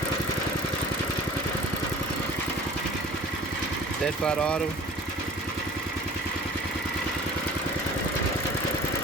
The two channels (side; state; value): both; normal; correlation 0.45